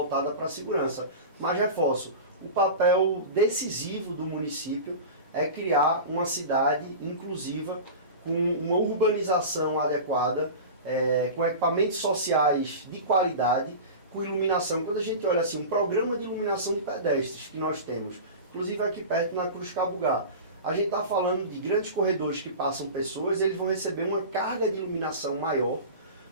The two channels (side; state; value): both; inverted; correlation -0.31